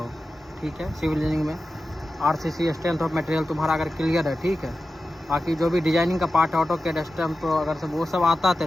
ठीक है, सिविल इंजीनियरिंग में आरसीसी स्ट्रेंथ ऑफ मटेरियल तुम्हारा अगर क्लियर है, ठीक है, बाकी जो भी डिजाइनिंग का पार्ट है, ऑटो कैड स्टैम्प, तो अगर सब वो सब आता है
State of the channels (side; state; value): both; normal; correlation 0.93